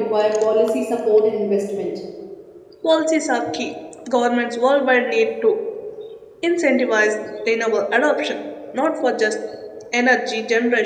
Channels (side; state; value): both; identical; correlation 1.00